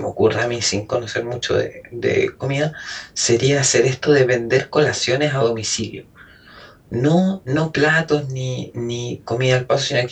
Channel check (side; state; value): both; identical; correlation 1.00